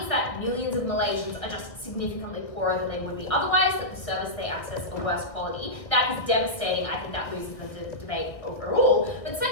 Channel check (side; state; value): right; late; 1.5 ms